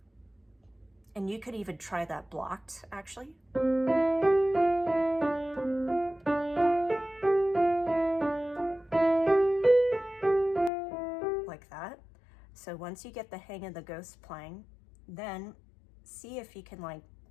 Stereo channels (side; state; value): right; drops out; at 10.7 s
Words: and you could even try that blocked actually. Like that. So once you get the hang of the ghost playing, then see if you can like